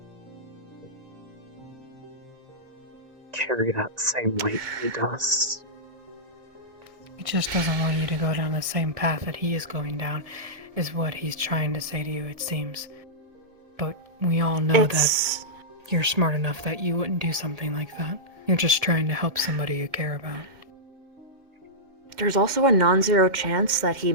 carry that same weight he does. He just doesn't want you to go down the same path that he is going down, is what he's trying to say to you, it seems. But we all know that you're smart enough that you wouldn't do something like that. You're just trying to help somebody you care about. There's also a non-zero chance that he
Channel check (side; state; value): left; late; 1.7 ms